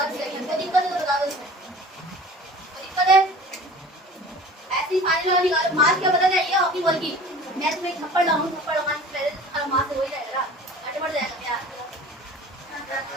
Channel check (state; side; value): normal; both; correlation 0.43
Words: सेकंड। कोई दिक्कत है तो बता दो इसमें। कोई दिक्कत है? ऐसी फाइनल वाली मार्क्स क्या पता चाहिए हॉकी बॉल की? मैं तुम्हें एक थप्पड़ लाऊं, थप्पड़ लगाने से पहले तुम्हारा मार्क्स हो ही जाएगा, आगे बढ़ जाएगा यार।